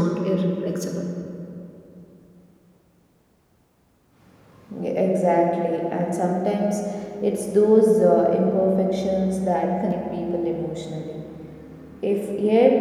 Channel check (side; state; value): both; identical; correlation 1.00